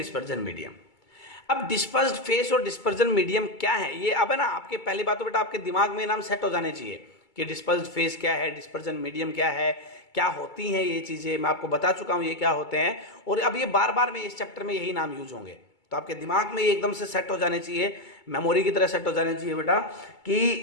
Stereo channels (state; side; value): late; right; 2.3 ms